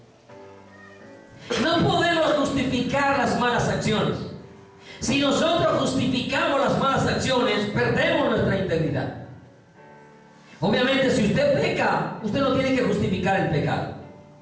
No podemos justificar las malas acciones. Si nosotros justificamos las malas acciones, perdemos nuestra integridad. Obviamente, si usted peca, usted no tiene que justificar el pecado.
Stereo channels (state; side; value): identical; both; correlation 1.00